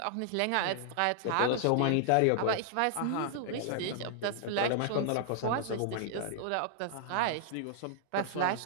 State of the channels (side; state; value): both; different; correlation -0.01